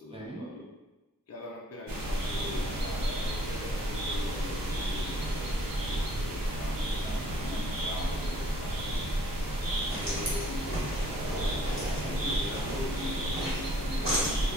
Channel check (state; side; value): normal; both; correlation 0.60